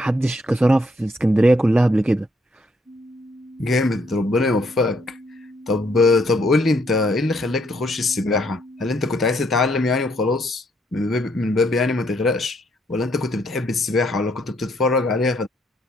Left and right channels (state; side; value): normal; both; correlation 0.71